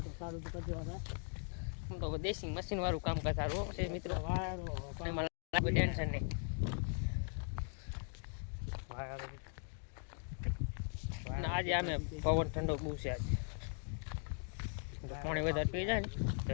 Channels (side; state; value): right; silent; 51 dB below the other